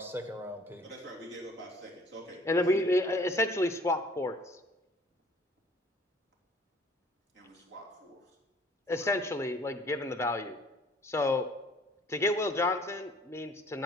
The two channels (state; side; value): normal; both; correlation 0.55